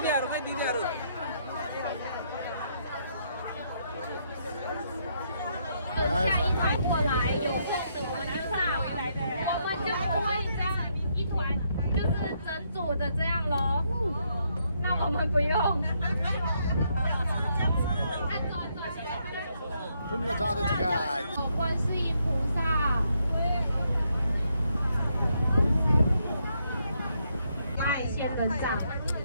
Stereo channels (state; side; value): inverted; both; correlation -0.75